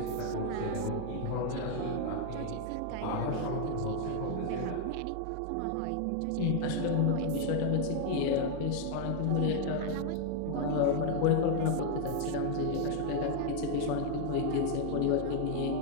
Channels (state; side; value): different; both; correlation 0.00